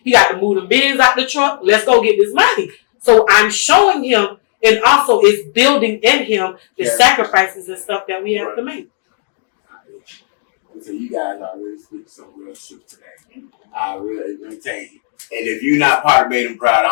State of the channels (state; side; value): silent; right; digital silence